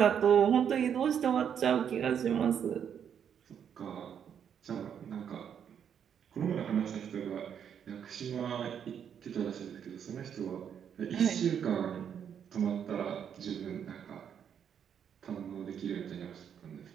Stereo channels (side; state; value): left; quieter; 8.3 dB